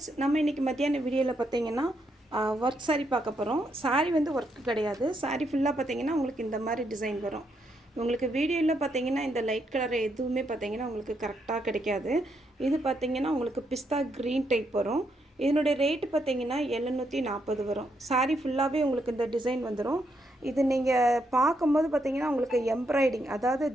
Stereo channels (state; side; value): normal; both; correlation 0.78